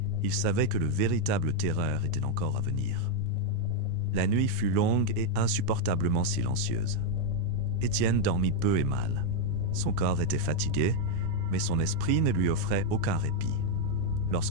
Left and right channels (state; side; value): different; both; correlation 0.00